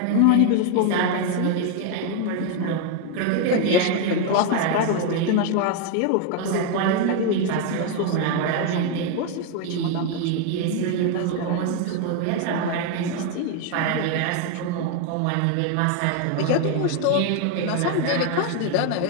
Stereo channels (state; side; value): different; both; correlation 0.01